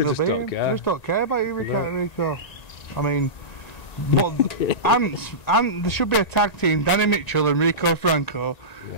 they'll be him. They just don't care about you, Rico. I mean, but there should be a tag team, Danny Mitchell and Rico Franco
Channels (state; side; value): late; right; 1.9 ms